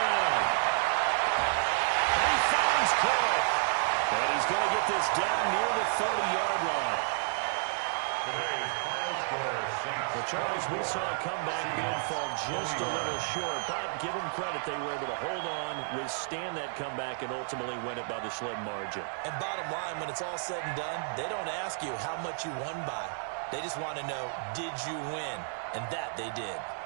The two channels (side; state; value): left; silent; digital silence